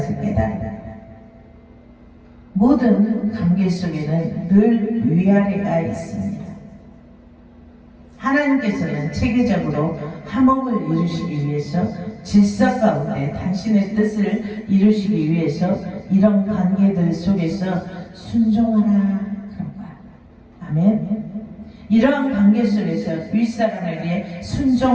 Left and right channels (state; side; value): identical; both; correlation 1.00